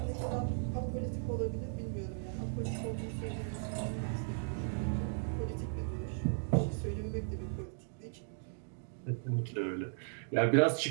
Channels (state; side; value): silent; left; digital silence